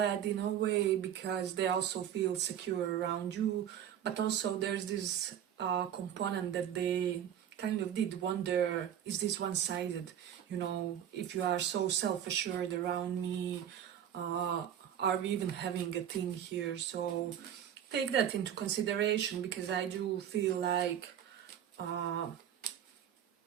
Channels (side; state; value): left; quieter; 9.9 dB